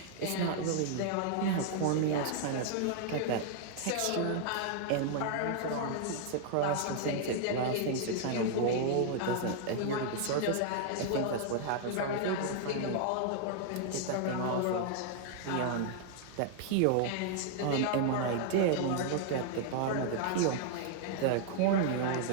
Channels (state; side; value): different; both; correlation 0.00